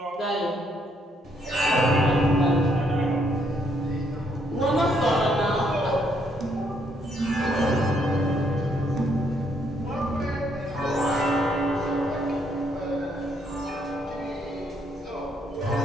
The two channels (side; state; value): both; normal; correlation 0.71